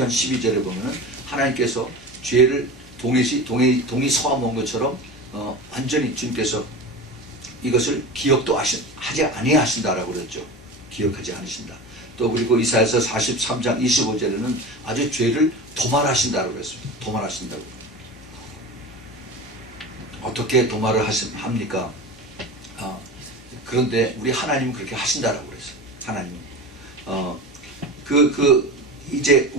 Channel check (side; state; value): both; normal; correlation 0.30